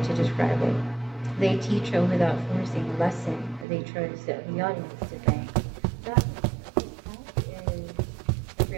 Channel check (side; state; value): left; drops out; at 3.7 s